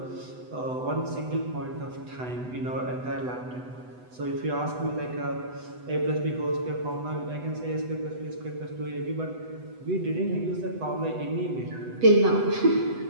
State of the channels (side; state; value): left; late; 8.0 ms